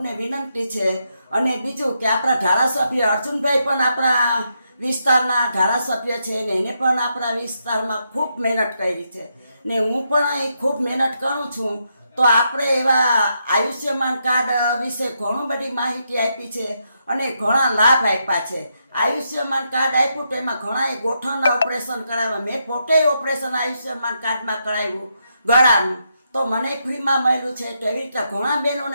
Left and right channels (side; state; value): both; inverted; correlation -0.81